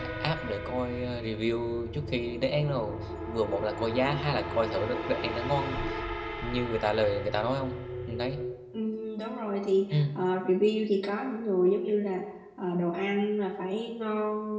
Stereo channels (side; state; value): both; identical; correlation 1.00